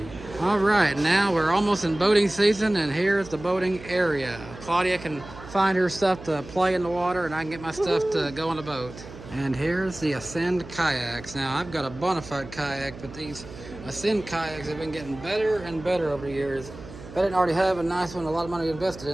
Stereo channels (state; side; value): noise; right; hum, 15 dB below the sound